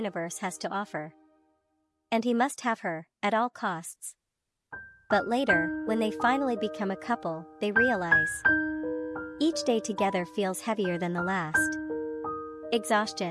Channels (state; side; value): identical; both; correlation 1.00